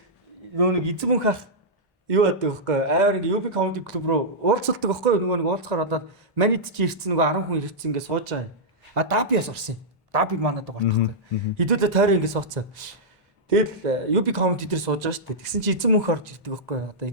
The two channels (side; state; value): both; normal; correlation -0.10